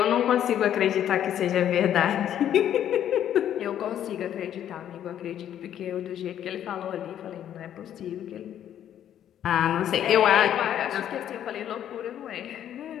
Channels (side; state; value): right; quieter; 10.5 dB